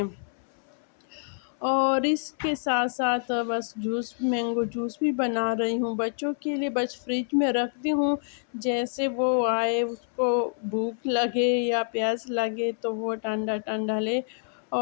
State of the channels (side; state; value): right; silent; 60 dB below the other